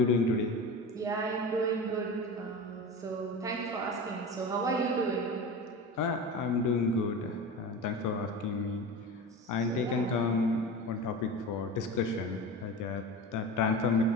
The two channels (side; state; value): both; normal; correlation 0.29